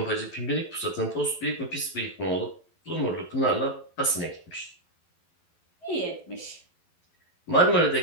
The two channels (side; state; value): right; late; 12 ms